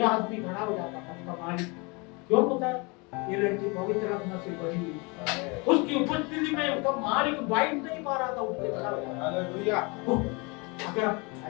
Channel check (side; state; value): right; quieter; 29.1 dB